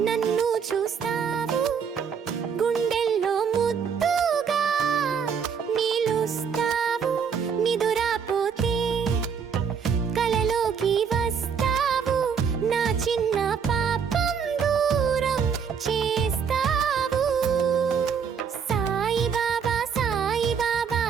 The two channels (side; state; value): left; quieter; 6.7 dB